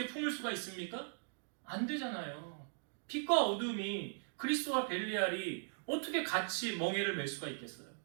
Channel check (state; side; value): silent; left; digital silence